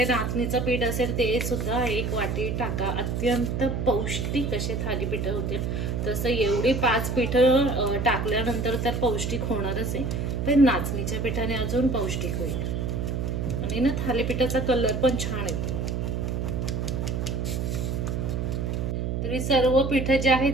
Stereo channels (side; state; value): right; noise; hum, 1 dB below the sound